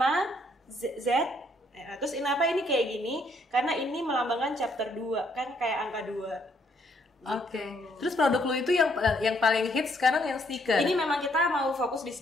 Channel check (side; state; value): both; normal; correlation 0.69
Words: Z. Terus kenapa ini kayak gini? Karena ini melambangkan chapter 2, kan kayak angka 2. Oke. Terus produk lu itu yang paling hits sekarang yang sneaker. Ini memang kita mau fokus di